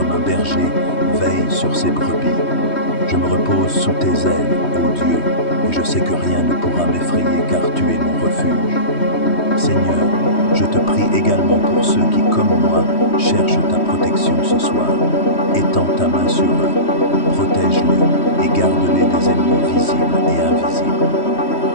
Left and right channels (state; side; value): late; right; 3.1 ms